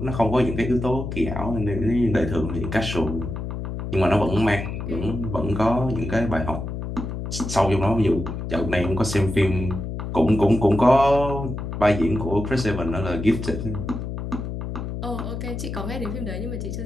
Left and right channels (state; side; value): noise; left; hum, 5 dB below the sound